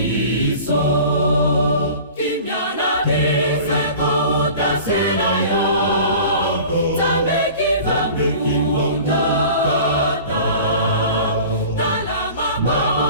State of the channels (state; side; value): inverted; both; correlation -0.42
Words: kimia na biso kouta se na yo nzambe kimbangu tata tala